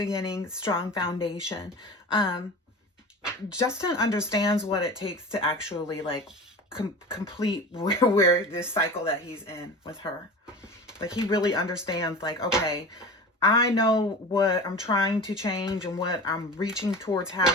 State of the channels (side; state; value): both; normal; correlation 0.34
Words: strong foundation. Justin understands what it takes to actually like complete where this cycle that he's in with her. Like he really understands like, okay, I know what I'm trying to change and what I'm reaching towards